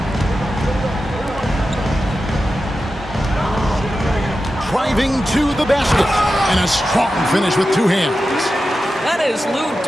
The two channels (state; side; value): normal; both; correlation 0.92